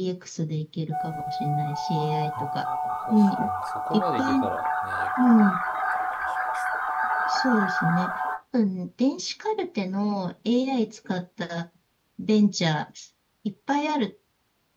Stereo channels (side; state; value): both; identical; correlation 1.00